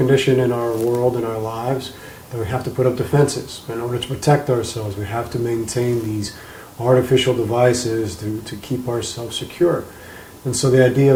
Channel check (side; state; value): both; identical; correlation 1.00